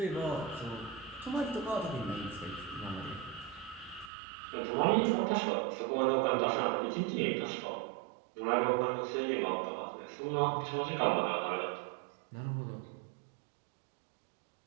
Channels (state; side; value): drops out; left; at 4.1 s